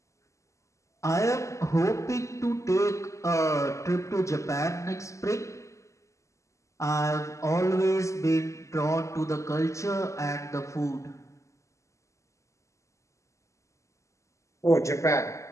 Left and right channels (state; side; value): late; right; 0.15 ms